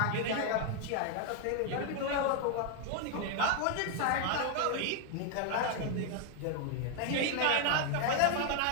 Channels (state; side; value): different; both; correlation 0.00